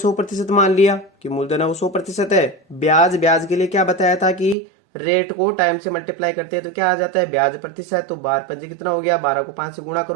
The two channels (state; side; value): drops out; left; at 4.5 s